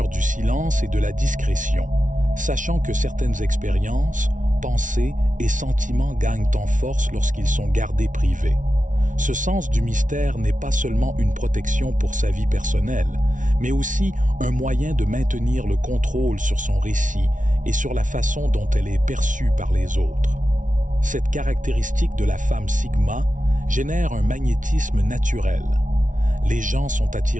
du silence et de la discrétion, sachant que certaines expériences, pensées et sentiments gagnent en force lorsqu'ils sont gardés privés. Ce sens du mystère n'est pas seulement une protection pour sa vie personnelle, mais aussi un moyen de maintenir le contrôle sur son récit et sur la façon dont elle est perçue par les autres. Cette caractéristique de la femme Sigma génère un magnétisme naturel. Les gens sont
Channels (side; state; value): left; late; 0.37 ms